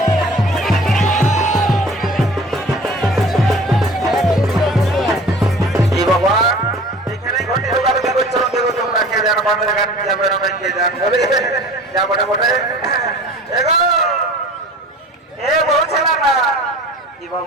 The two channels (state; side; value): normal; both; correlation 0.44